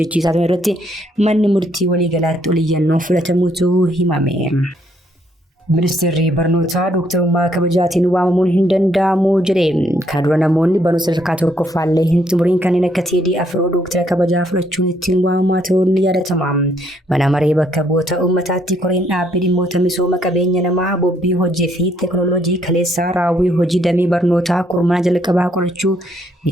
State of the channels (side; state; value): both; normal; correlation 0.70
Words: turan irratti manni murtii waliigalaatti oliyyannoo fudhatamuutu himame. Ministeerri barnootaa dooktarummaa kabajaatiin waamamuun hin danda'amu jedhe. Kana dura namoonni barnoota sadarkaa tokkoffaallee hin xumuriin kanneen akka TDF dooktara kabajaa fudhachuun ittiin waamamaa ta'uun ni yaadatama. Mana maree bakka bu'oota uummataatti koreen dhaabbii dhimmoota misooma qabeenya namaa bobbii hojii fi teekinooloojii kaleessaa raawwii hojii damee barnootaa kurmaana jalqabaa qorachuu